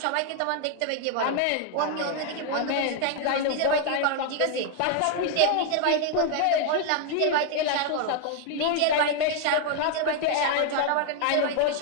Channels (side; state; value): both; different; correlation 0.00